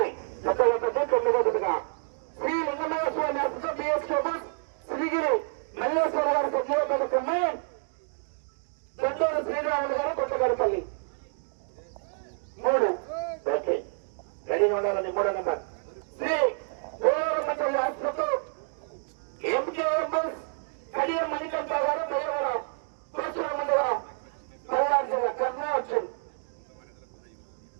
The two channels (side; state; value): left; silent; digital silence